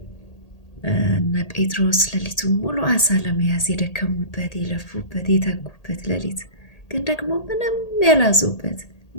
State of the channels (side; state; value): right; late; 1.8 ms